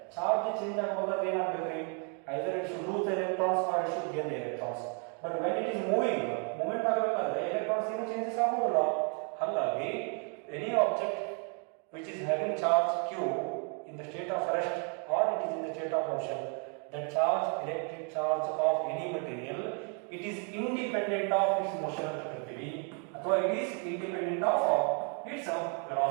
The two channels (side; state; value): left; quieter; 39.1 dB